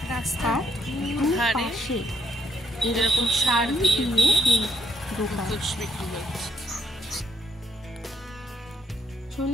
রাস্তার পাশে এরকম শাড়ি দিয়ে দোকান।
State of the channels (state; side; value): normal; both; correlation 0.72